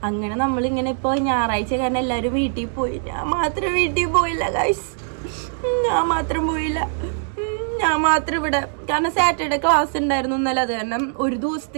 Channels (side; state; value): left; silent; digital silence